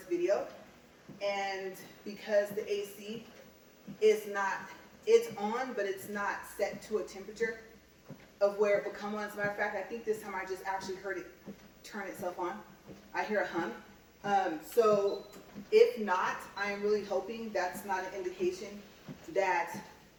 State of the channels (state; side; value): identical; both; correlation 1.00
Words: video, and because the AC is not, it's on, but it's not set to a temperature of where it will come on. As a matter of fact, I think this time I just actually heard it turn itself on. I hear a hum. So if not, I am really hoping that's not an indication that